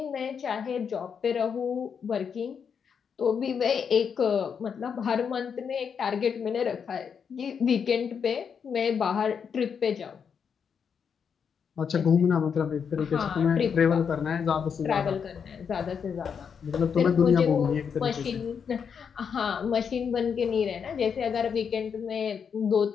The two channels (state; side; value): quieter; right; 6.8 dB